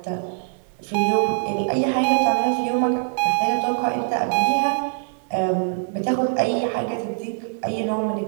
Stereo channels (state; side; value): silent; left; digital silence